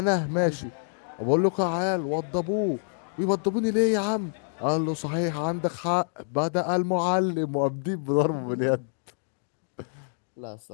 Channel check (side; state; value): right; silent; 60 dB below the other